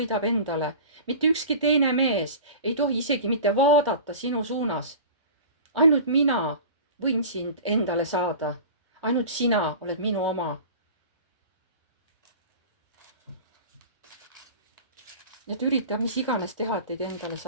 endale. Mitte ükski teine mees ei tohi isegi mitte vaadata sinu suunas. Ainult mina võin sind endale saada. Ainult sina oled minu oma. Et ürita mis iganes teha, et teid endale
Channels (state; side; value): inverted; both; correlation -0.37